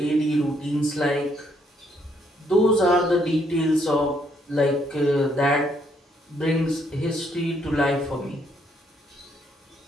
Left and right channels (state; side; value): normal; both; correlation 0.71